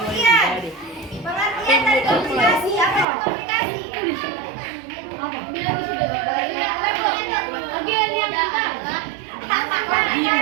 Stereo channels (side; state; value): left; drops out; at 3.1 s